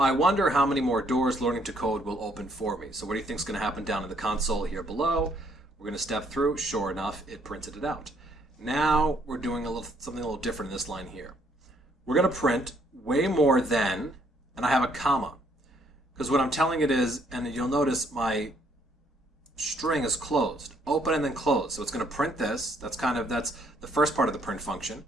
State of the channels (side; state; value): both; normal; correlation 0.68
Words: wonder how many more doors learning to code will open for me. So what do you think is going to happen down in the console here below? We're going to step through. Sure enough, it printed it out. Now we're doing something a little different in this line here. We're going to print way more than, and I have a comma. Because what I'm telling it is, and you'll notice my string is closed, open and then close. So it's going to print this. That's the first part of the print function.